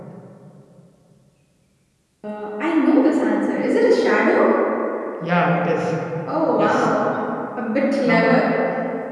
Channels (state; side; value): identical; both; correlation 1.00